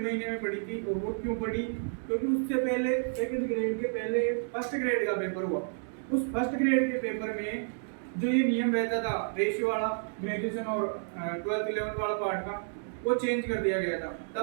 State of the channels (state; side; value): silent; left; digital silence